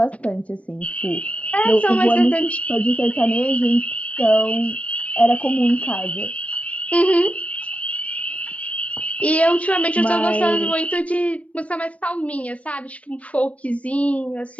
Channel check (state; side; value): late; right; 0.065 ms